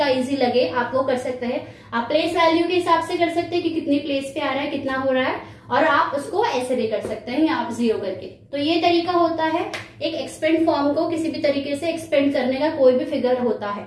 इजी लगे आप वो कर सकते हैं। आप प्लेस वैल्यू के हिसाब से कर सकते हैं कि कितनी प्लेस पे आ रहा है, कितना हो रहा है, और आप उसको ऐसे भी कर सकते हैं या आप 0 करके। तो ये तरीका होता है एक एक्सपेंड फॉर्म को किसी भी तरीके से एक्सपेंड करने का, कोई भी फिगर होता है।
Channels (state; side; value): identical; both; correlation 1.00